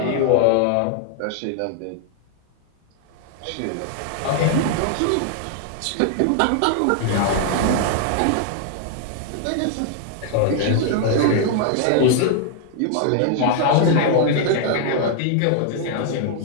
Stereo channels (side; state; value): both; different; correlation 0.00